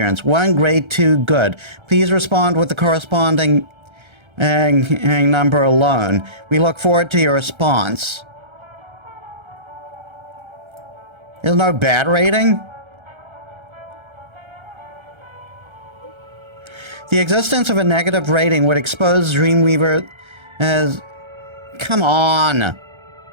1 great, 2 good. Please respond with the corresponding number alone. We look forward to your response. There's no bad rating? The existence of a negative rating would expose Dreamweaver as... Come on!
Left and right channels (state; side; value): late; left; 1.3 ms